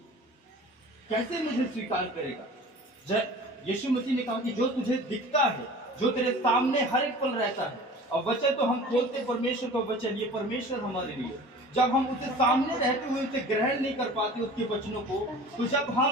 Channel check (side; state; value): both; normal; correlation 0.42